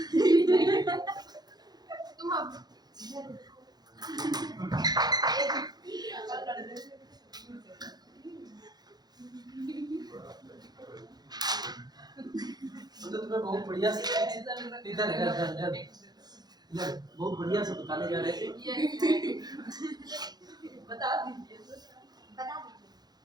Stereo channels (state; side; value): late; left; 0.19 ms